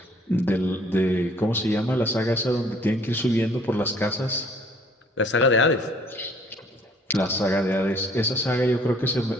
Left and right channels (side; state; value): both; normal; correlation 0.58